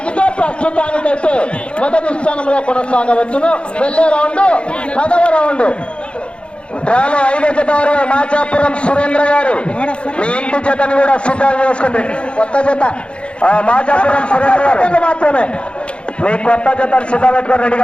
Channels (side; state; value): right; late; 0.057 ms